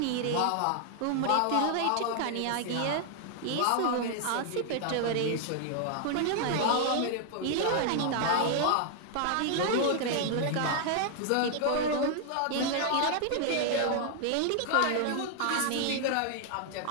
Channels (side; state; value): both; different; correlation 0.00